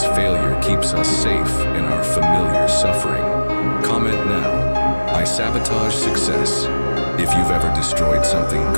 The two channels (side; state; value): both; inverted; correlation -1.00